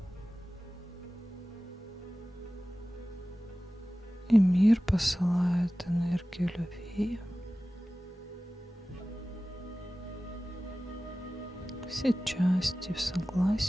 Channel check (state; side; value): normal; both; correlation 0.96